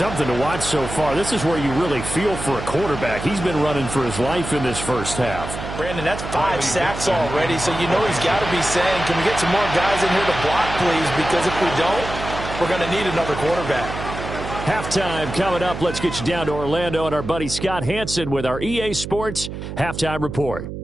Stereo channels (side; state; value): right; noise; hum, 8 dB below the sound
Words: to watch so far. This is where you really feel for a quarterback. He's been running for his life in this first half. Brandon, that's 5 sacks already, so you know he's got to be saying, can we get some more guys in here to block, please? Because if we don't, we're going to need another quarterback. Halftime coming up. Let's get you down to Orlando and our buddy Scott Hansen with our EA Sports Halftime Report.